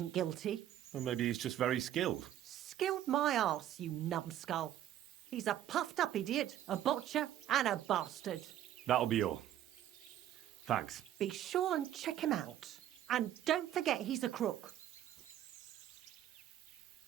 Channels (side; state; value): left; quieter; 11.7 dB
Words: guilty. Or maybe he's just very skilled. Skilled my arse, you numbskull. He's a puffed-up idiot, a botcher, and a bastard. That'll be all. Thanks. Be sure and check him out. And don't forget he's a crook.